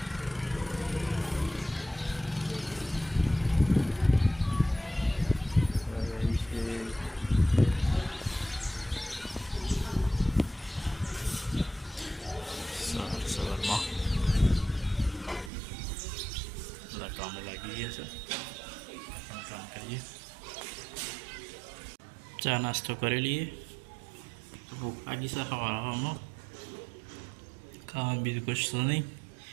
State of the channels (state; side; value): drops out; left; at 15.5 s